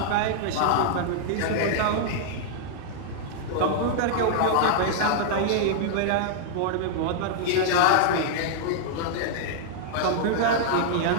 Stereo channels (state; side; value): different; both; correlation -0.01